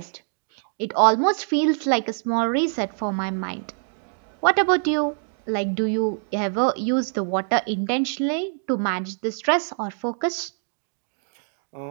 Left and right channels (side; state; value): left; silent; 62 dB below the other